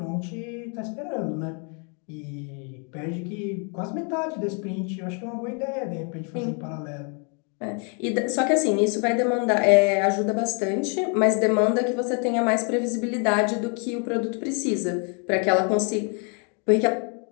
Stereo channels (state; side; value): quieter; right; 38.2 dB